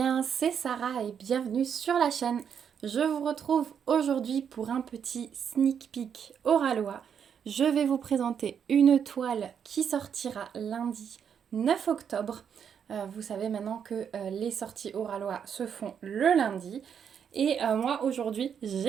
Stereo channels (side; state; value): left; quieter; 7.7 dB